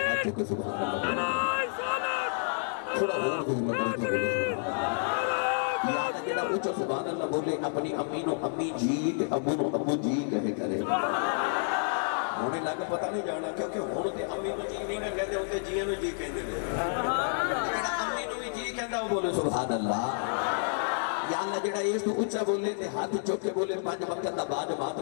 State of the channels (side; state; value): right; silent; digital silence